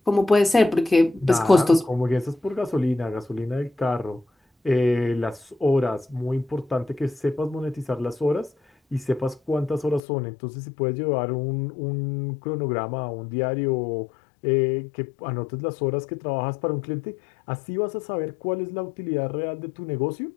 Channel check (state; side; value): drops out; right; at 10.0 s